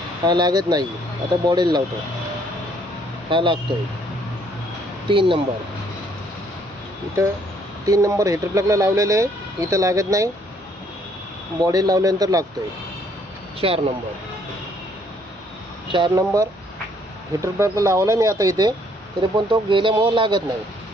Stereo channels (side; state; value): both; normal; correlation 0.65